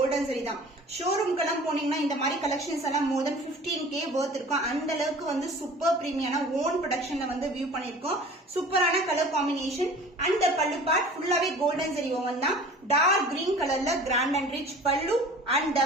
ஜரி தான். ஷோரூம்க்கெல்லாம் போனீங்கன்னா இந்த மாதிரி கலெக்ஷன்ஸ் எல்லாம் more than 15k worth இருக்கும். அந்த அளவுக்கு வந்து சூப்பர் பிரீமியமான ஓன் ப்ரொடக்ஷன்ல வந்து வியூ பண்ணிருக்கோம். சூப்பரான colour combination. And pallu part ஃபுல்லாவே கோல்டன் ஜரி ஓவன் தான். டார்க் கிரீன் கலர்ல grand and rich pallu. And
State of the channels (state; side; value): normal; both; correlation 0.44